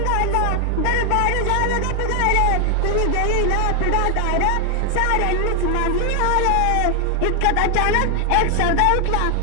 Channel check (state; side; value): different; both; correlation 0.01